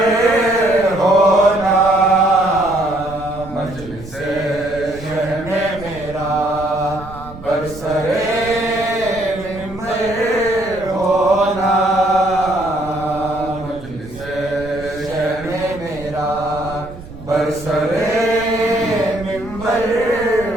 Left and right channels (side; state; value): right; noise; rumble, 16 dB below the sound